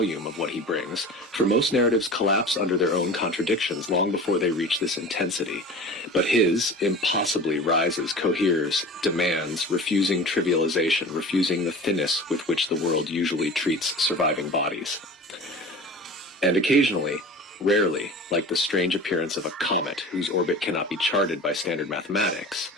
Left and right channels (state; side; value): normal; both; correlation 0.37